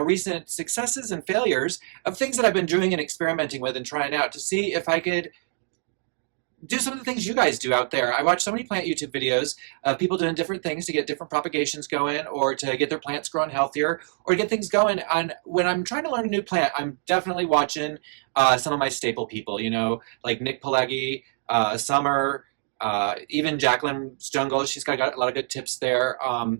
recent successes and failures of things that I've been doing and experimenting with and trying out to see if I could do some of the things you guys do out there. I watch so many plant YouTube videos of people doing different things to get different propagations going or to get their plants growing healthier or to get things going. And when I'm trying to learn a new plant, I'm definitely watching some of my staple people, you know, like Nick Pileggi, Summer, even Jacqueline Jungle. She's got a lot of good tips there.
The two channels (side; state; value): left; silent; digital silence